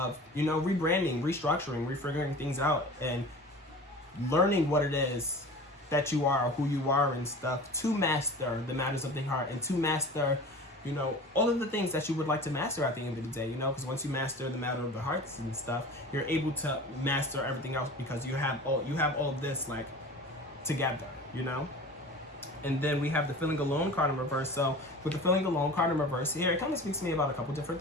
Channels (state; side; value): normal; both; correlation 0.38